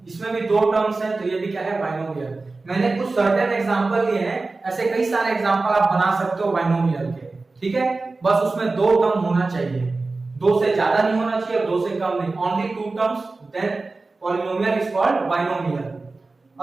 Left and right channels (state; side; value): quieter; left; 3.6 dB